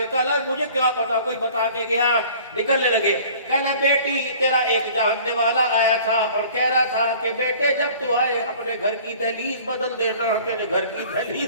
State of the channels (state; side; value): inverted; both; correlation -0.48